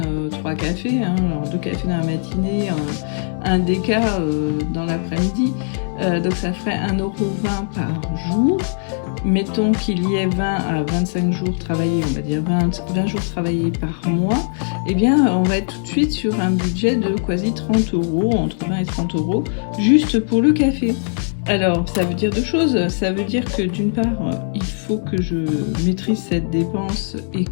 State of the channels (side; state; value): right; silent; 66 dB below the other